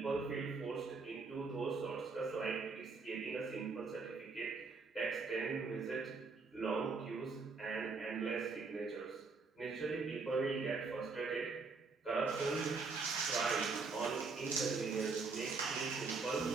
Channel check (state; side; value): quieter; left; 4.4 dB